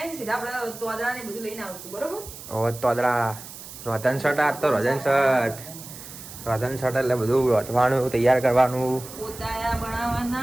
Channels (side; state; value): right; noise; hiss, 14 dB below the sound